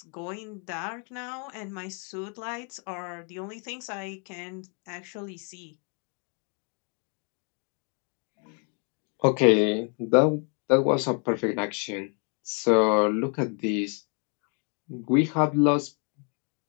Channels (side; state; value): right; quieter; 38.3 dB